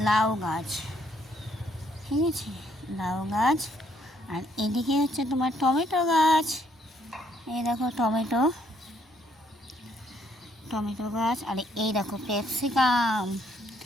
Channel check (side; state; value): both; normal; correlation 0.69